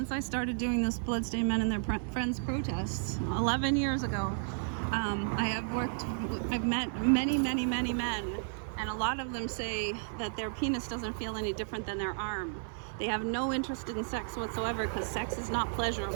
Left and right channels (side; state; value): left; silent; 56 dB below the other